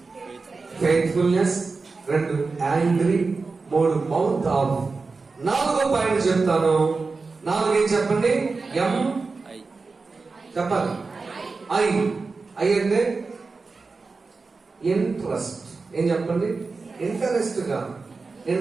ఫెయిత్ఫుల్నెస్, 2 యాంగ్రీ, 3 మౌత్ ఆఫ్. 4వ పాయింట్ చెప్తాను. 4 ఏం చెప్పండి? ఎం చెప్పాలి. ఐ అంటే ఇంట్రెస్ట్. ఏం చెప్పండి? ఇంట్రెస్ట్ కాదు,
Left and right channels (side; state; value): left; quieter; 4.2 dB